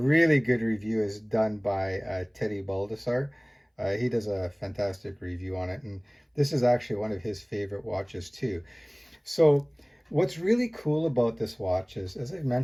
good review is done by Teddy Baldessar. He does a fantastic review on it, and this is actually one of his favorite watches too. So what's really cool about this watch is, as I've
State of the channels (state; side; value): identical; both; correlation 1.00